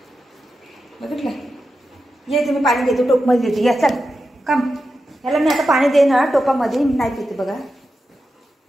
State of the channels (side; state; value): both; normal; correlation 0.90